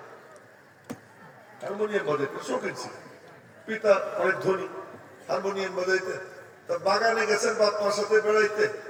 শৌখিন ছিলেন। পিতা অনেক ধনী, হারমোনিয়াম বাজাইতেন। তা বাগানে গেছেন বাপ মার সাথে বেড়াইতে,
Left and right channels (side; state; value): both; identical; correlation 1.00